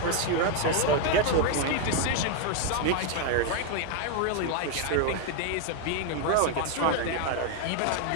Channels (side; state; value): both; different; correlation 0.01